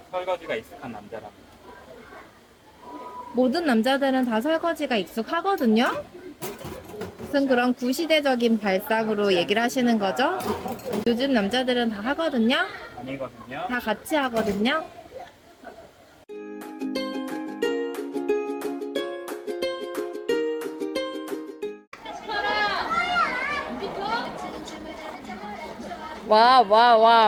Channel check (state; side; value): identical; both; correlation 1.00